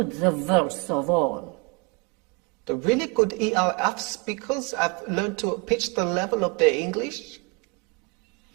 the verse of all. The really good ELF speakers have learned to pitch the level of their English.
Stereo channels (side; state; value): left; quieter; 29.9 dB